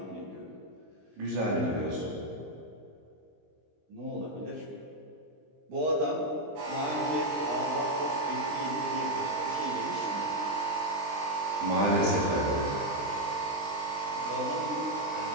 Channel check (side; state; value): left; late; 20 ms